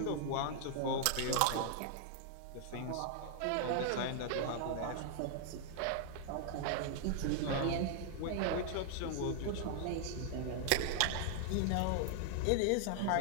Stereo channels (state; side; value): different; both; correlation -0.01